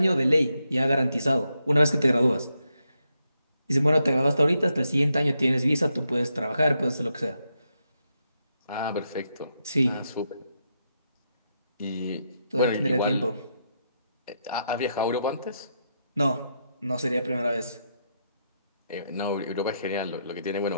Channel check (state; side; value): inverted; both; correlation -0.82